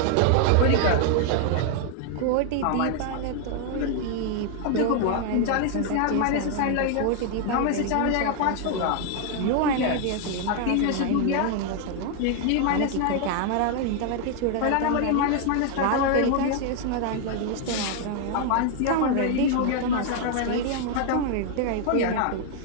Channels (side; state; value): both; different; correlation 0.00